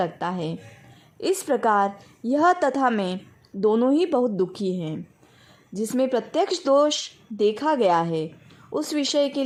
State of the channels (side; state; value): both; identical; correlation 1.00